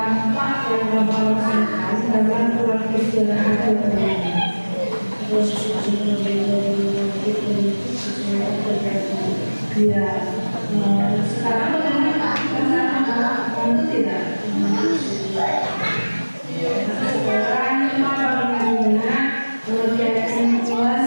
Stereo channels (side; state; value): both; inverted; correlation -1.00